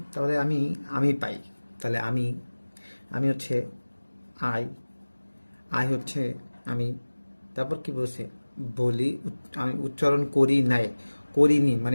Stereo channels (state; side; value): inverted; both; correlation -1.00